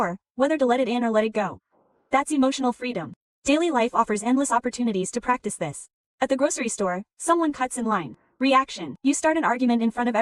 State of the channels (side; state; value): both; identical; correlation 1.00